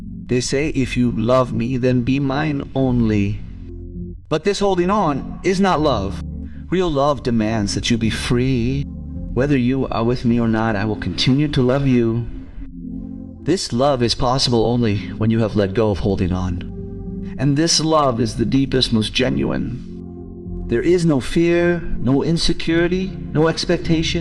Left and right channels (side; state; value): both; identical; correlation 1.00